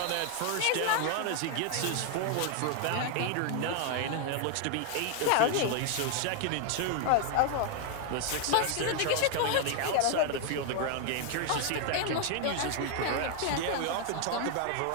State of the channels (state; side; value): different; both; correlation 0.00